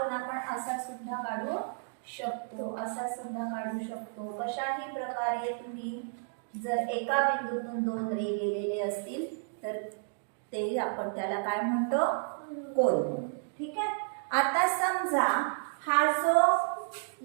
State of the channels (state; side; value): silent; left; digital silence